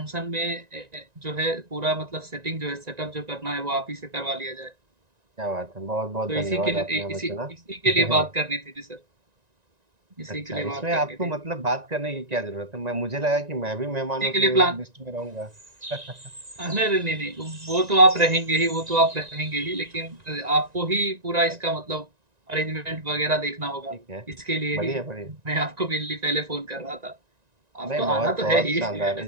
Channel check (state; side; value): late; left; 1.9 ms